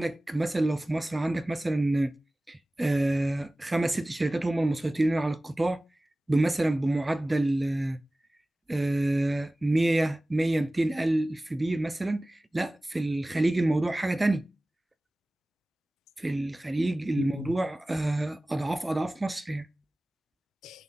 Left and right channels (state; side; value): normal; both; correlation 0.98